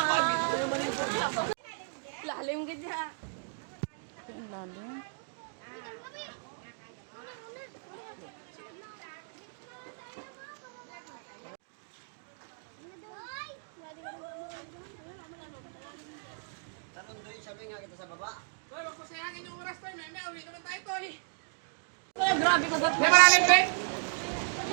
Lalim ka dyan. Lalim.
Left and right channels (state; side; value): silent; left; digital silence